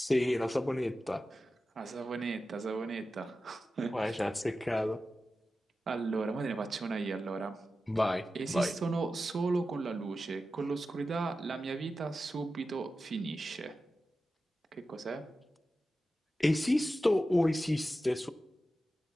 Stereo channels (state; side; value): normal; both; correlation 0.93